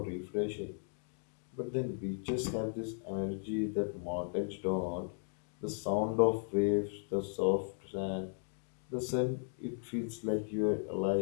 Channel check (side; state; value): right; silent; digital silence